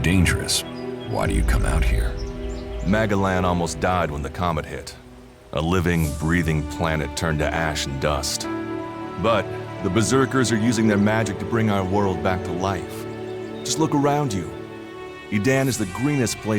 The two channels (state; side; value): identical; both; correlation 1.00